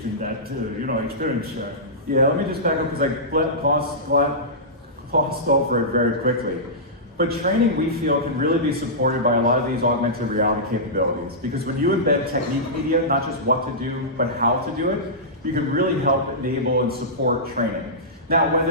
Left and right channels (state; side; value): normal; both; correlation -0.16